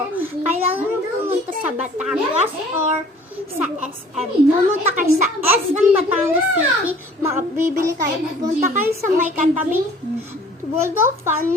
Kailangan nyo pumunta sa Batangas or sa SM. Pumunta kayo sa SM Batangas City, makabibili kayo. Pumunta kayo sa may katabing World of Fun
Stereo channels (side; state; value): both; normal; correlation 0.51